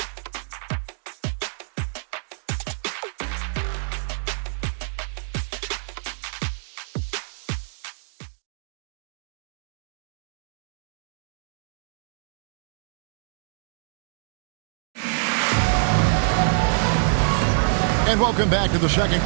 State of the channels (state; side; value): silent; left; digital silence